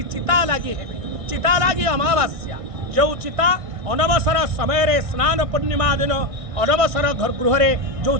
चिता लगी है चिता लगी अमावास्या जो चिता अनवसर समय रे स्नान पूर्णिमा दिन अनवसर घर गृह जो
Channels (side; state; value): left; late; 1.6 ms